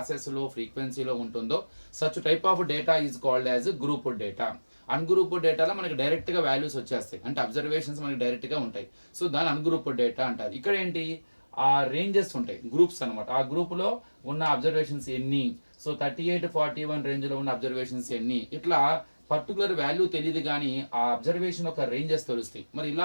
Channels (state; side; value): inverted; both; correlation -1.00